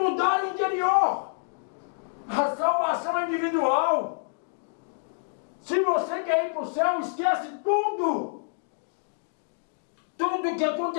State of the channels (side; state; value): right; silent; digital silence